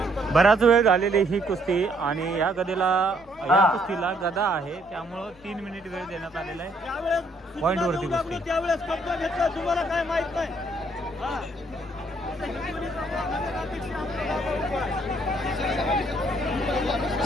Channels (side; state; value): both; normal; correlation 0.67